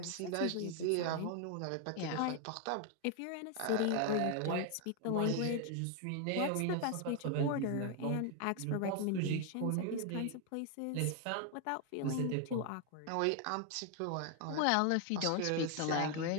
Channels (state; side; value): different; both; correlation 0.00